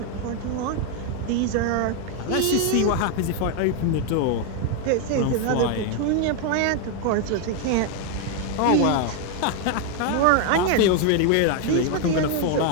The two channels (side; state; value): both; different; correlation 0.01